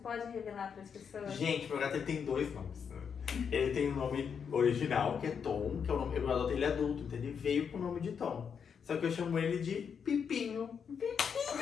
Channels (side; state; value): right; quieter; 6.9 dB